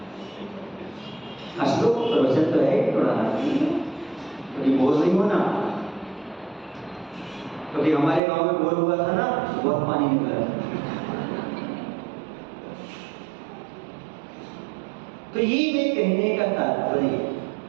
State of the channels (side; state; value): left; drops out; at 8.2 s